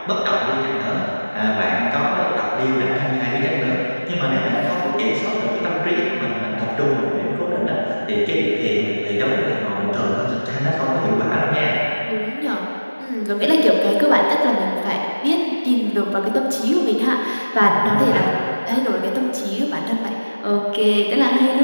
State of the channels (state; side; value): inverted; both; correlation -1.00